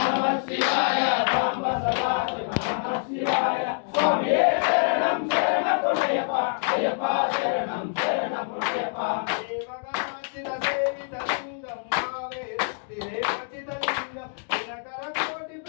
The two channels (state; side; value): silent; right; digital silence